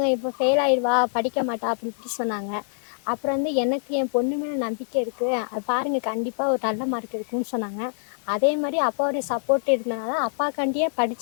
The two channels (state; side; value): silent; right; digital silence